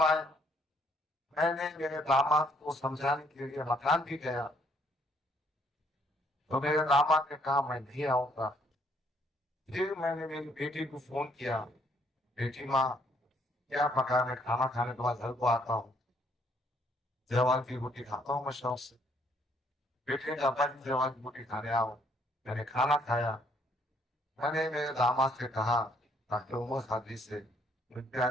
आए। मैंने मेरे दामाद को समझाने के लिए मकान भी गया, तो मेरे दामाद ने कहा मैं नहीं आऊंगा। फिर मैंने मेरी बेटी को फोन किया, बेटी माँ क्या पकाने, खाना खाने के बाद घर को आता हूँ, जवान की रोटी खाता हूँ मैं शौक से। बेटे का अब्बा जी जवान की रोटी खाने आओ। मैंने खाना खाया। मैंने मेरे दामाद से कहा डॉक्टर उमर सादी से,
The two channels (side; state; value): both; normal; correlation 0.67